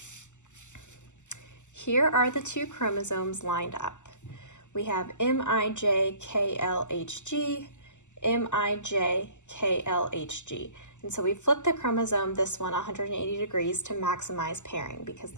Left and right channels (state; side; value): late; right; 0.84 ms